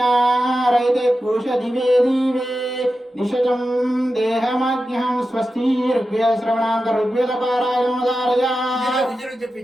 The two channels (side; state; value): both; normal; correlation 0.92